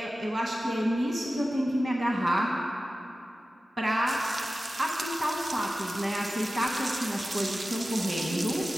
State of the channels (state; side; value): normal; both; correlation 0.95